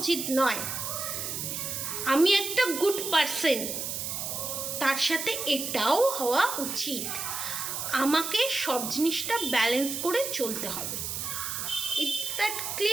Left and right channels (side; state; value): right; noise; hiss, 4 dB below the sound